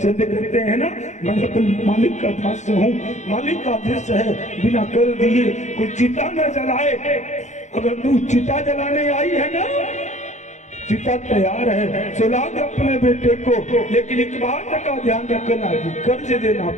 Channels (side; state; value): right; late; 0.34 ms